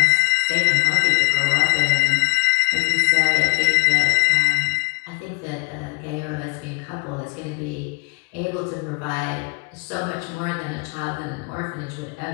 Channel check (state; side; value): quieter; right; 33.6 dB